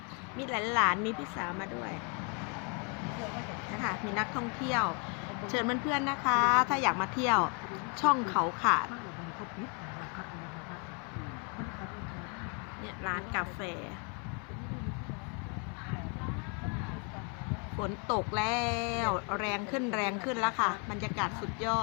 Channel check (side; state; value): right; quieter; 36.3 dB